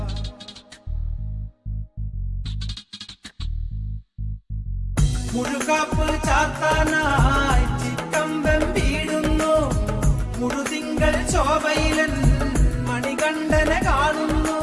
മുഴുകാപ്പ് ചാത്താനായി ചിക്കമ്പം വീടുന്നു മുഴുതിങ്കൾ ശോഭയിലെന്ന്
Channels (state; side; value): identical; both; correlation 1.00